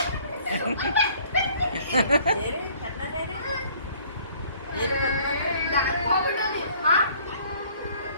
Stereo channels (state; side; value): inverted; both; correlation -0.57